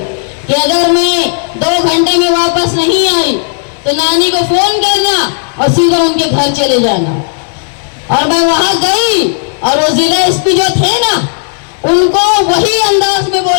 कि अगर मैं 2 घंटे में वापस नहीं आई तो नानी को फोन करना और सीधा उनके घर चले जाना। और मैं वहां गई और वो जिला एसपी जो थे ना उनको वही अंदाज में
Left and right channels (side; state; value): right; silent; digital silence